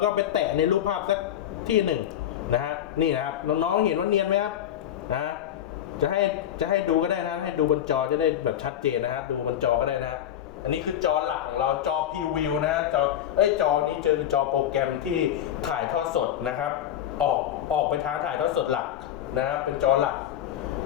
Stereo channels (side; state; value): right; quieter; 10.8 dB